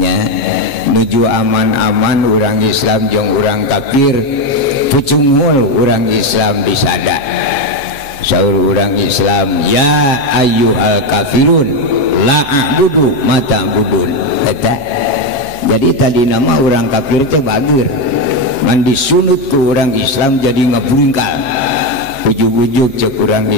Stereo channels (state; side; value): late; right; 7.4 ms